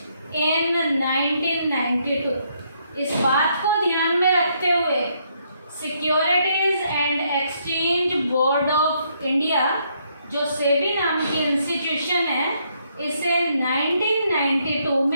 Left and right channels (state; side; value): inverted; both; correlation -0.73